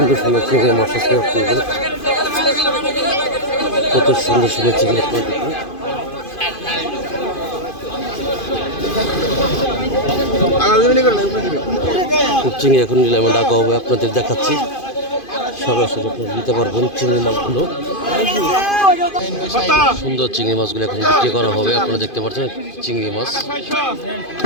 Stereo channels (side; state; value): right; late; 2.5 ms